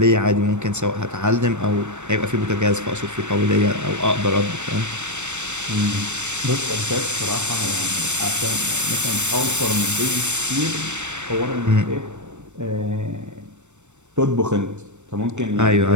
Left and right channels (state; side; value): late; left; 0.84 ms